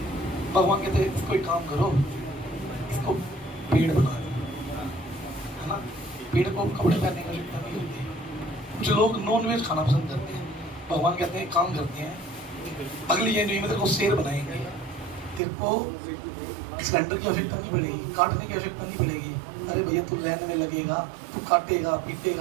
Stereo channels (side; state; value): left; drops out; at 15.4 s